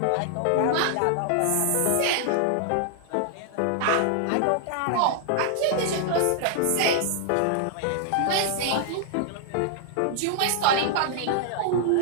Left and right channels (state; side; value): different; both; correlation -0.01